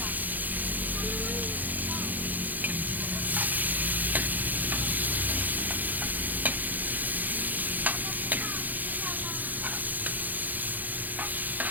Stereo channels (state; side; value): late; left; 0.083 ms